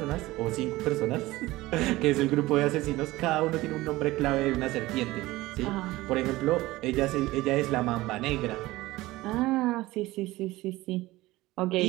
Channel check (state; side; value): quieter; left; 18.6 dB